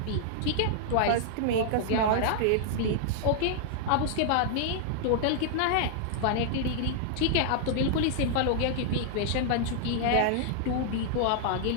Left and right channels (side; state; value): both; different; correlation -0.01